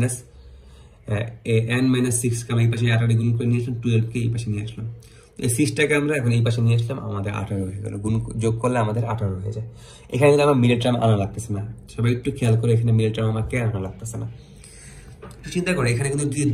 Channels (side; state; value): both; identical; correlation 1.00